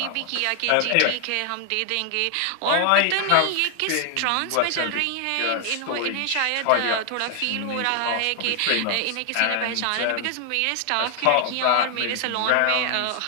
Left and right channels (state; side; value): different; both; correlation 0.00